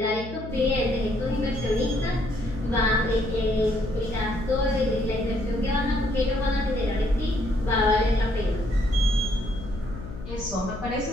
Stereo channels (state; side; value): noise; left; hum, 11 dB below the sound